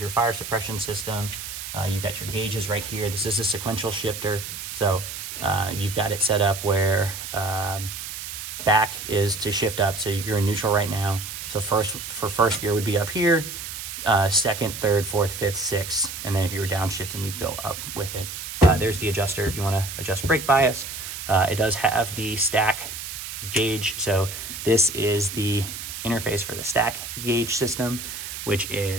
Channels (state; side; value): noise; right; hiss, 8 dB below the sound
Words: your fire suppression system. You've got your gauges right here. This is a sequential shifter. So you've got it set up where back is to shift up. So you're in neutral right now. So first gear would be up here, second, third, fourth, fifth, sixth. And then if you were downshifting, you'd go up with it. There's the adjuster if you want to adjust brake bias. It does have the stack gauge. So this is the interface for the stack gauge system, which